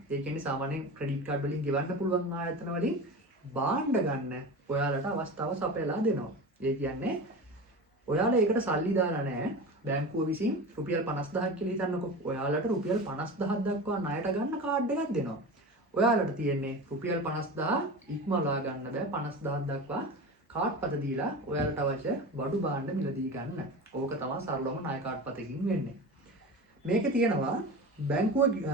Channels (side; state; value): both; normal; correlation 0.30